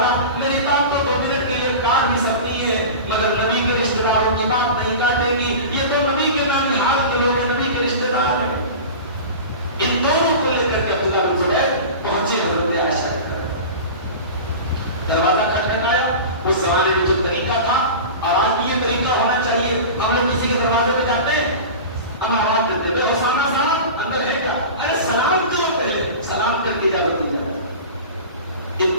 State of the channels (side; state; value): both; inverted; correlation -0.32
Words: میری بات تو 2 منٹ کے لیے کاٹ بھی سکتی ہے، نہیں ہے مگر نبی کے رشتہ داروں کی بات نہیں کاٹے گی. یہ تو نبی کے نانحال کے لوگ ہیں, نبی کے رشتہ دار ہیں. ان دونوں کو لے کر کے عبداللہ بن زبیر پہنچے حضرت عائشہ کے طرف. دروازہ کھٹکھٹایا. اس زمانے میں جو طریقہ تھا اور آج بھی یہ طریقہ ہونا چاہیے, ہم لوگ کسی کے دروازے پہ جاتے ہیں ہم آواز دیتے ہیں اسامہ صاحب اندر ہے کیا؟ ارے سلام کرو, پہلے سلام کر کے اجازت دی جائے.